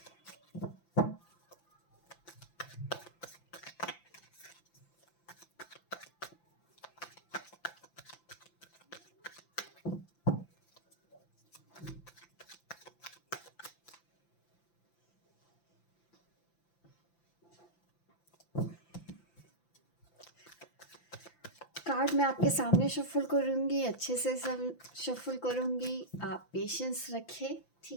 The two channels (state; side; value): late; right; 5.9 ms